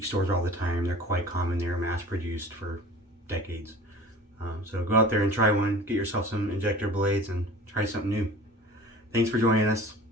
stores all the time. They're quite common. They're mass produced for decades. So go out there and try one. Get yourself some injector blades and try something new. Thanks for joining us.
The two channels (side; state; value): both; normal; correlation 0.43